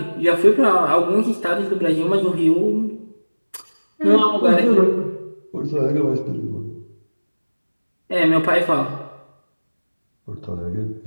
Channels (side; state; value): both; inverted; correlation -1.00